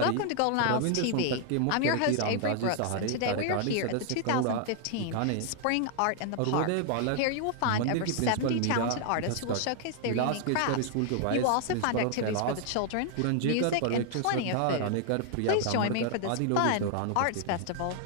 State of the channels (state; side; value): different; both; correlation 0.00